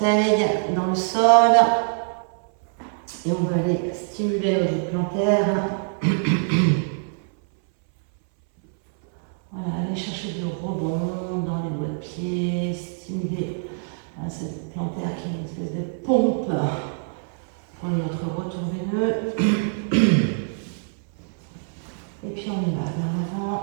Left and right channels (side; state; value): left; silent; 62 dB below the other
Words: dans le sol. Et on va aller stimuler nos os plantaires. Voilà, aller chercher du rebond dans les doigts de pied, stimuler cette plantaire qui est une espèce de pompe pour notre retour veineux. Et puis on y va vers l'avant,